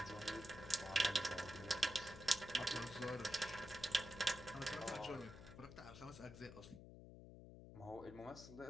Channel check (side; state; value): left; noise; hum, 13 dB below the sound